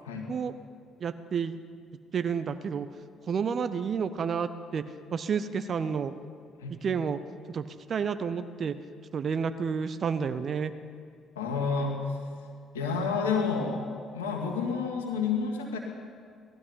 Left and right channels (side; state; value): both; normal; correlation 0.58